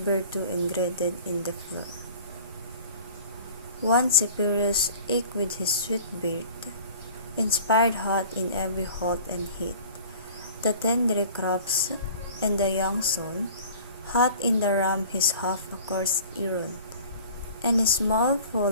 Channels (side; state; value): both; inverted; correlation -0.45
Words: ingraded in the floor. One Cyperus eke with his sweet beard, inspired hot in every halt and heat, the tender crops and the young son, hot in the ram his half-accursed Iron, and his small